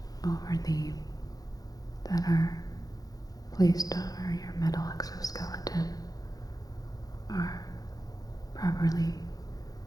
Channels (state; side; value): late; right; 0.18 ms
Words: that are placed over your metal exoskeleton, are properly